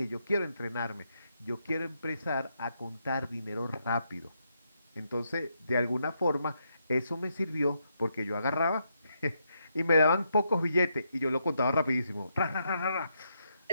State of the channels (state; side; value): inverted; both; correlation -0.79